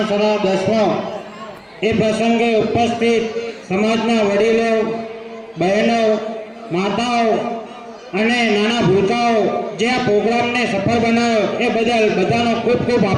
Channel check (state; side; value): identical; both; correlation 1.00